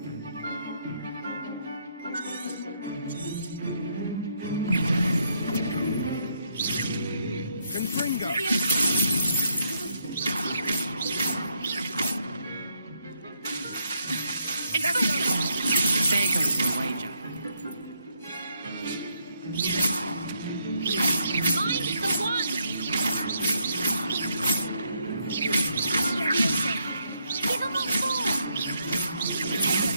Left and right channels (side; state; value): both; inverted; correlation -0.75